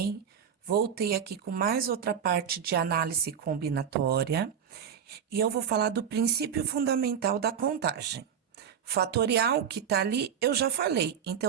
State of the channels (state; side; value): quieter; left; 8.0 dB